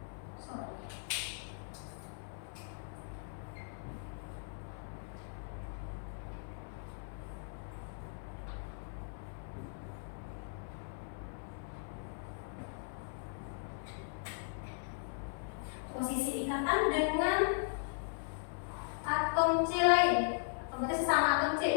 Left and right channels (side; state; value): right; silent; 52 dB below the other